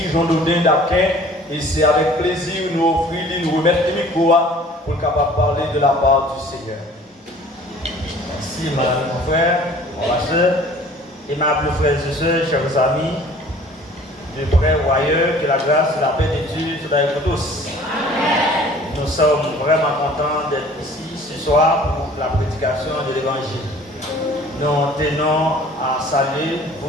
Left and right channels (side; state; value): both; normal; correlation 0.50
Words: Jean-Dodin d'Aquin, et c'est avec plaisir nous offrir, nous remettre le micro pour capable parler de la part du Seigneur. Merci, madame, mon frère, ma soeur, aimables frères et sœurs, chers amis, de près ou ailleurs, que la grâce et la paix de Dieu soient avec vous tous. Amen. Nous sommes vraiment contents d'être ici ce soir pour la prédication de l'Évangile. Nous tenons à saluer